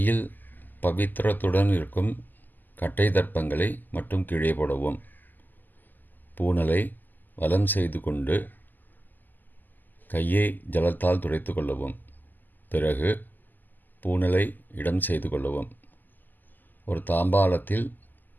பவித்திரத்துடன் இருக்கும் கட்டை தர்ப்பங்களை மட்டும் கீழே போடவும். பூனலை வலம் செய்து கொண்டு கையை ஜலத்தால் துடைத்து கொள்ளவும். பிறகு பூனலை இடம் செய்து கொள்ளவும். ஒரு தாம்பாளத்தில்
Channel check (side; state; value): right; late; 0.087 ms